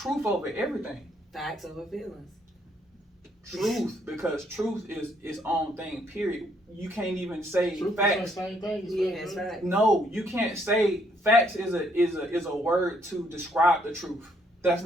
over everything. Facts over feelings. Truth, because truth is its own thing. Period. You can't even say Truth facts. is the same thing. It's facts. No, you can't say facts is a word to describe the truth. That's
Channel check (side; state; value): both; normal; correlation 0.69